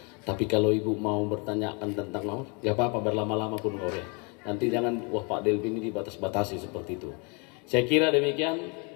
Tapi kalau Ibu mau bertanyakan tentang mau, nggak apa-apa, berlama-lama pun boleh. Nanti jangan, wah Pak Delvin ini dibatas-batasi seperti itu. Saya kira demikian,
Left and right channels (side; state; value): right; quieter; 32.6 dB